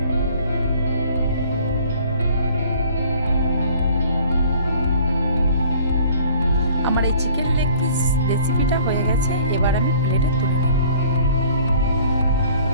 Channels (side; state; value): both; inverted; correlation -0.53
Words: আমার এই চিকেন লেগ পিস রেসিপিটা হয়ে গেছে, এবার আমি প্লেটে তুলে নেব।